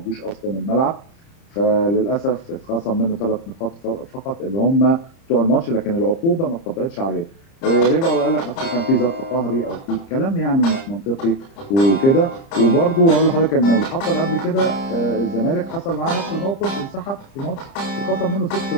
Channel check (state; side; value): late; right; 30 ms